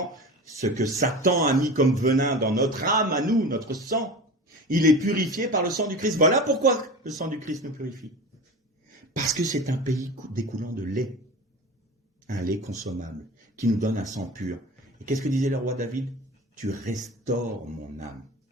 ce que Satan a mis comme venin dans notre âme, à nous, notre sang, il est purifié par le sang du Christ. Voilà pourquoi le sang du Christ nous purifie. Parce que c'est un pays découlant de lait, un lait consommable, qui nous donne un sang pur. Et qu'est-ce que disait le roi David? Tu restaures mon âme,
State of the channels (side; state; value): both; normal; correlation 0.32